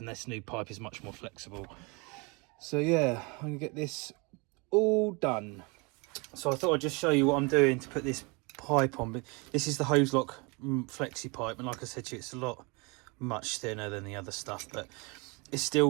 this new pipe is much more flexible. So yeah, I'm gonna get this all done. So I thought I'd just show you what I'm doing to put this pipe on. But this is the Hozelock flexi pipe, and like I said to you, it's a lot much thinner than the other stuff, but it's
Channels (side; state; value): left; quieter; 29.2 dB